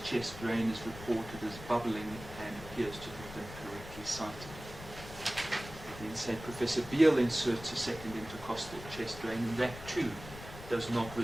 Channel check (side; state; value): left; noise; rumble, 13 dB below the sound